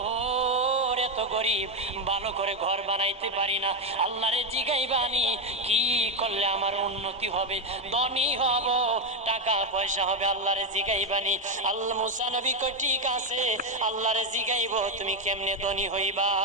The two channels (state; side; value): normal; both; correlation 0.06